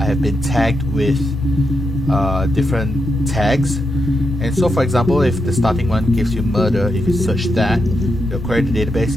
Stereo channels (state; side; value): normal; both; correlation 0.84